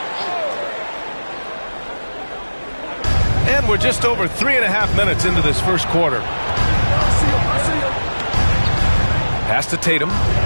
And we're just over 3.5 minutes into this first quarter. Pass to Tatum.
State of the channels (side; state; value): both; inverted; correlation -1.00